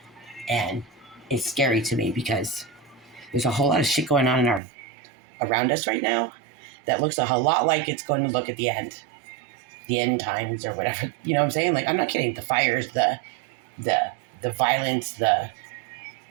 And it's scary to me because there's a whole lot of shit going on around us right now that looks a whole lot like it's going to look at the end times or whatever. You know what I'm saying? Like, I'm not kidding. The fires, the violence, the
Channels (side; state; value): left; drops out; at 4.6 s